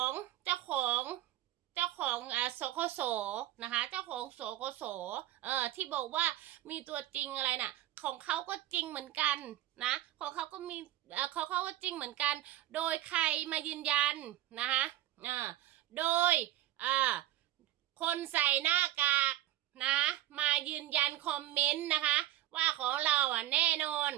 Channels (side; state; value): left; quieter; 14.1 dB